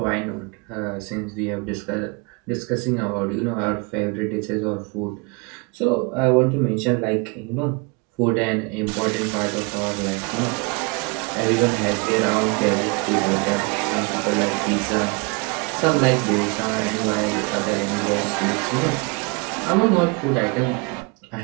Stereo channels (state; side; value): quieter; left; 30.2 dB